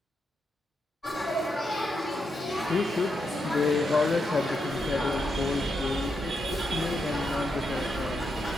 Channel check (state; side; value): normal; both; correlation 0.83